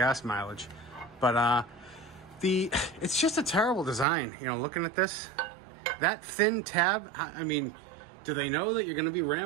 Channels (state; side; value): drops out; left; at 4.0 s